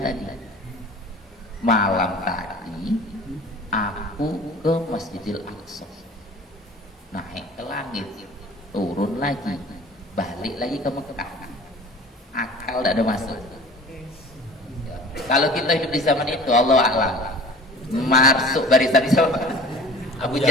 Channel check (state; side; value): normal; both; correlation 0.44